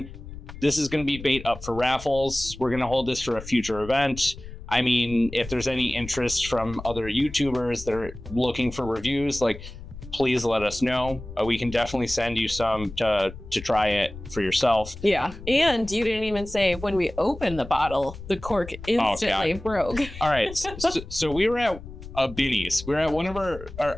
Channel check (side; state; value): left; noise; rumble, 13 dB below the sound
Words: this is gonna be bait up for raffles. We're gonna hold this for a future event. I mean, if there's any interest from other YouTubers that are looking for reviews, like, please let us know. We can definitely send you some to try it for yourself. Yeah. And you didn't even say when we opened the bottle, the cork instantly broke. All right. So we were at a Binny's. We were at one of